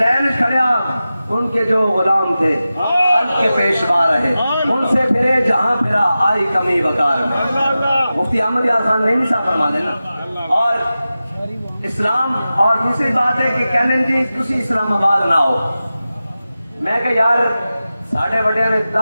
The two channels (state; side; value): inverted; both; correlation -0.94